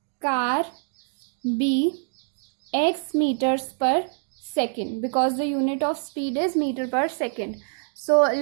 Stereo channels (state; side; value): silent; left; digital silence